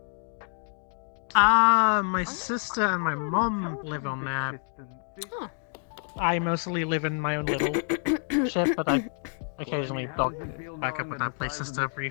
My sister and my mom live on there. Huh. I mostly live in my own little ship, but I occasionally dog back up with that places to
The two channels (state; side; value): silent; right; 59 dB below the other